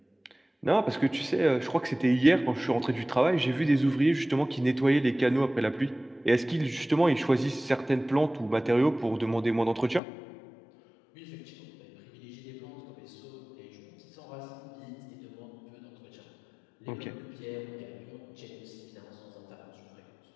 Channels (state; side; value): drops out; right; at 10.0 s